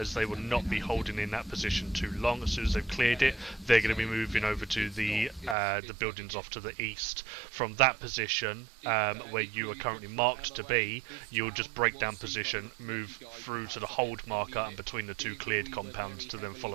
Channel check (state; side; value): drops out; left; at 5.6 s